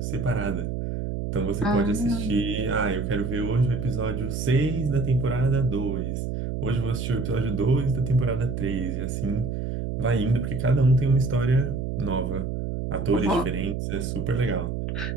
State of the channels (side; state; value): right; noise; hum, 3 dB below the sound